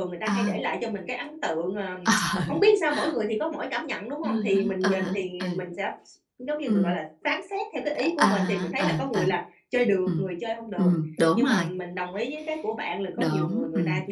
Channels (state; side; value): identical; both; correlation 1.00